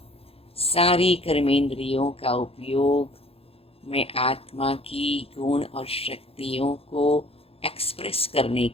सारी कर्मेंद्रियों का उपयोग मैं आत्मा की गुण और शक्तियों को एक्सप्रेस करने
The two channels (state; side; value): late; right; 0.28 ms